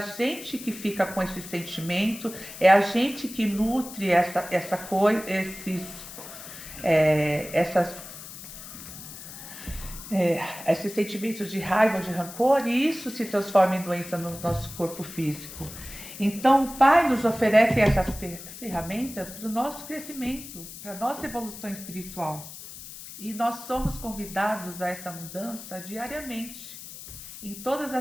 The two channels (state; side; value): noise; left; hiss, 13 dB below the sound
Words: que fica com esse sentimento, é a gente que nutre esses sentimentos de raiva, de rancor, e isso se transforma em doença no nosso corpo físico. Então o Pai nos oferece essas ferramentas para o nosso crescimento, para a nossa evolução espiritual. E nós somos convidados a essa mudança diariamente, em todas